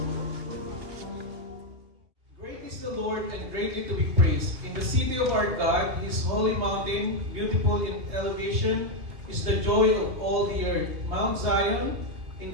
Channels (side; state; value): left; late; 2.6 ms